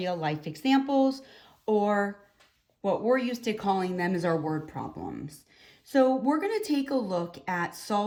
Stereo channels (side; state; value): both; identical; correlation 1.00